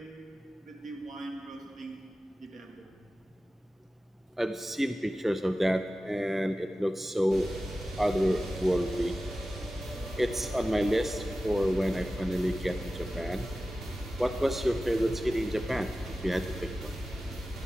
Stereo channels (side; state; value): both; normal; correlation 0.94